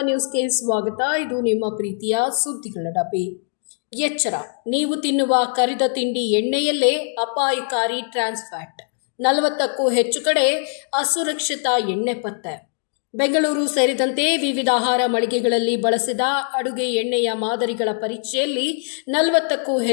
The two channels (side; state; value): right; silent; digital silence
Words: ನ್ಯೂಸ್ಗೆ ಸ್ವಾಗತ. ಇದು ನಿಮ್ಮ ಪ್ರೀತಿಯ ಸುದ್ದಿಗಳ ಡಬ್ಬಿ. ಎಚ್ಚರ, ನೀವು ತಿನ್ನುವ ಕರಿದ ತಿಂಡಿ ಎಣ್ಣೆಯಲ್ಲೇ ಅಪಾಯಕಾರಿ ಟ್ರಾನ್ಸ್ ಫ್ಯಾಟ್. 40ಕ್ಕೂ ಹೆಚ್ಚು ಕಡೆ ಅಸುರಕ್ಷಿತ ಎಣ್ಣೆ ಪತ್ತೆ. ಬೆಂಗಳೂರು ಸೇರಿದಂತೆ ವಿವಿಧ ಆಹಾರ ಮಳಿಗೆಗಳಲ್ಲಿ ಬಳಸಿದ ಅಡುಗೆ ಎಣ್ಣೆಯ ಮಾದರಿಗಳ ಪರೀಕ್ಷೆಯಲ್ಲಿ 40ಕ್ಕೂ